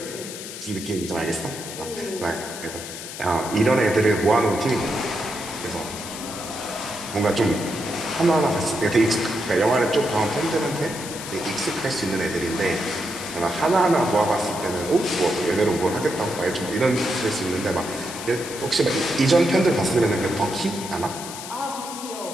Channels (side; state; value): left; noise; hiss, 10 dB below the sound